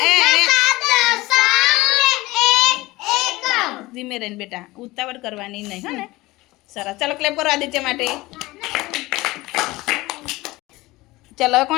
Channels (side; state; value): right; quieter; 20.0 dB